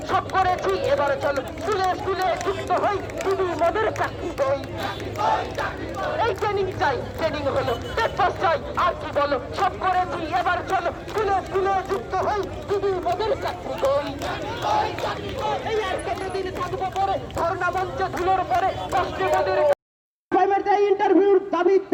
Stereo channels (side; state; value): both; identical; correlation 1.00